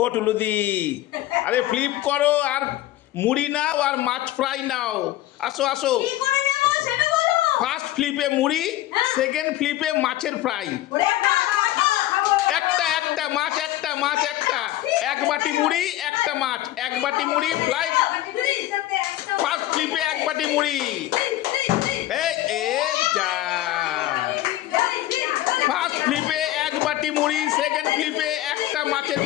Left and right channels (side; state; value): right; quieter; 15.0 dB